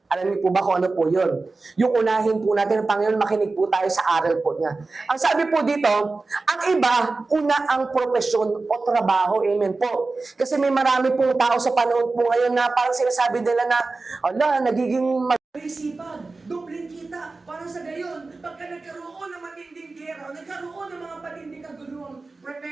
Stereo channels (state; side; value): quieter; left; 3.6 dB